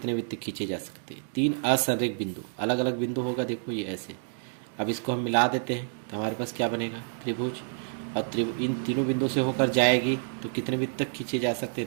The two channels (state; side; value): silent; left; digital silence